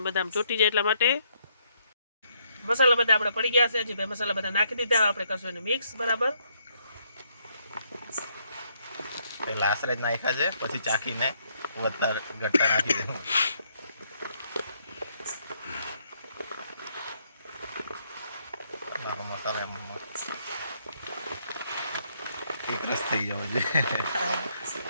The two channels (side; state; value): both; inverted; correlation -0.72